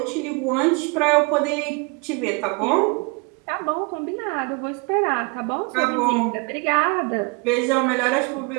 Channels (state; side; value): quieter; left; 31.3 dB